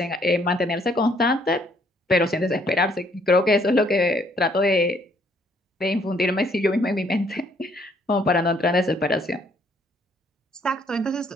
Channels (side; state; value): both; normal; correlation 0.66